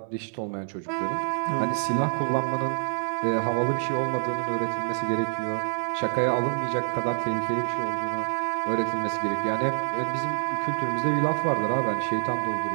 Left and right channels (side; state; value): left; silent; 59 dB below the other